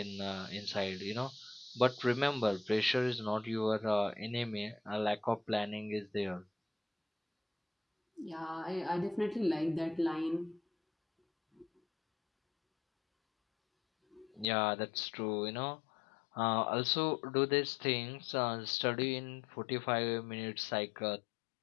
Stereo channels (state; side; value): drops out; right; at 14.5 s